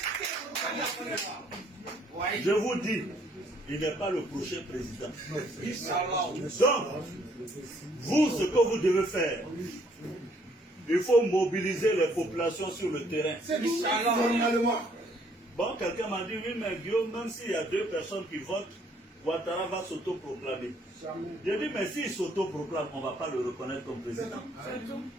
Je vous dis, il n'est pas le prochain président. Donc, vous, ce que vous devez faire, il faut mobiliser les populations sur le terrain. Bon, quelqu'un m'a dit, oui, mais Guillaume, même s'il y a 2 personnes qui votent, Ouattara va s'autoproclamer. J'ai dit, mais s'il s'autoproclame, on ne va pas le reconnaître comme président.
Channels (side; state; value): both; normal; correlation 0.65